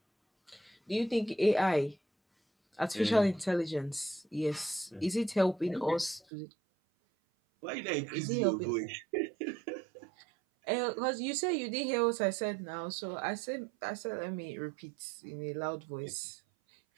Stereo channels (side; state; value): left; drops out; at 6.2 s